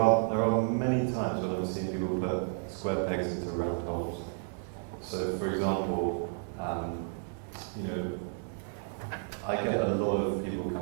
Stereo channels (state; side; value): silent; left; 57 dB below the other